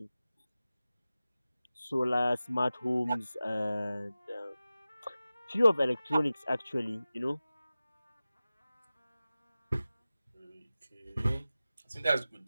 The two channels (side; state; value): both; inverted; correlation -0.96